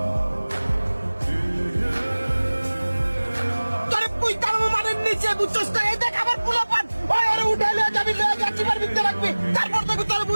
তোরে তুই কার মানের নিচে বুঝছস না? এই দেখ আমার পোলাপান, ওই ওরে উঠাইলে যাবি লয়ে যাচ্ছি মার ভিতরে রাখবি, তারপর তোকে তোরে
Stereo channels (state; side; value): inverted; both; correlation -1.00